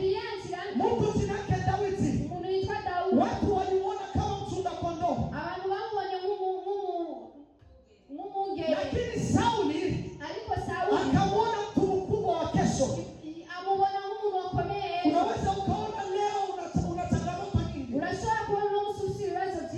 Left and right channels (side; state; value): both; identical; correlation 1.00